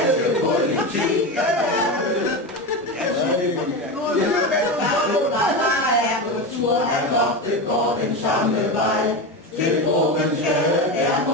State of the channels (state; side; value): normal; both; correlation 0.19